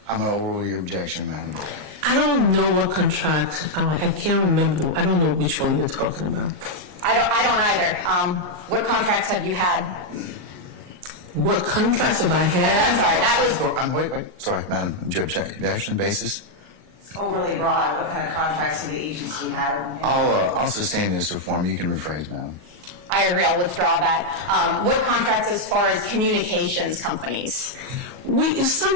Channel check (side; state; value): left; late; 39 ms